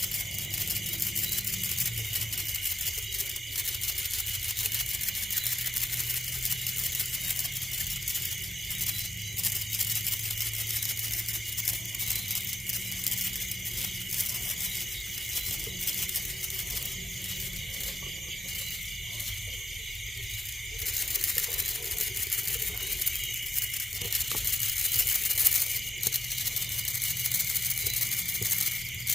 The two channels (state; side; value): normal; both; correlation 0.89